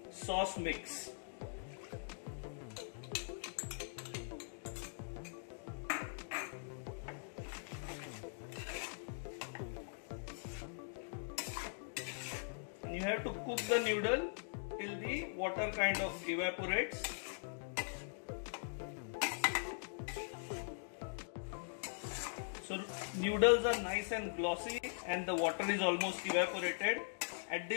sauce mix. And you have to cook the noodle till the water kind of evaporates. So noodles are nice and glossy and the water is almost evaporated. At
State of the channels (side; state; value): right; silent; digital silence